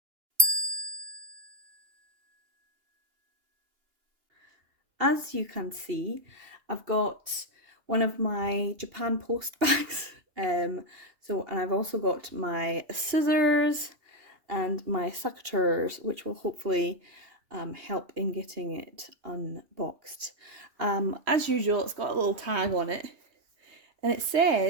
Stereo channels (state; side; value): late; left; 2.8 ms